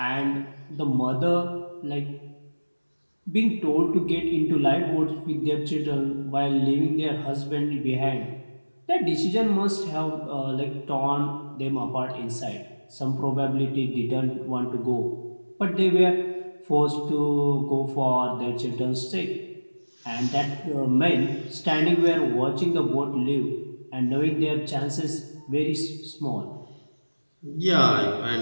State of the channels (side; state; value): both; inverted; correlation -1.00